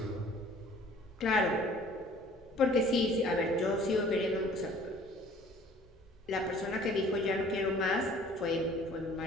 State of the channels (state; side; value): normal; both; correlation 0.52